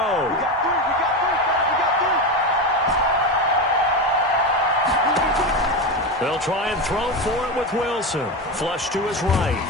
They'll try and throw for it with Wilson. Flush to his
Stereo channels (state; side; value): normal; both; correlation 0.17